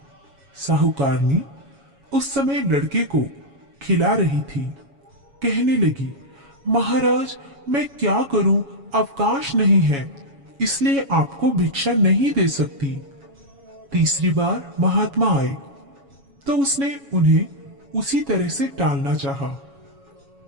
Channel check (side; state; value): left; late; 7.2 ms